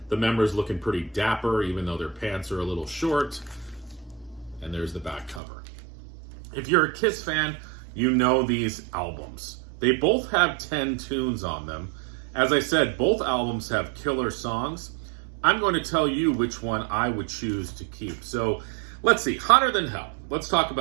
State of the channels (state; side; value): drops out; left; at 5.4 s